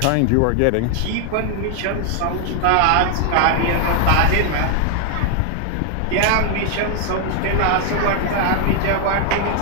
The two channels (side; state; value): both; different; correlation 0.00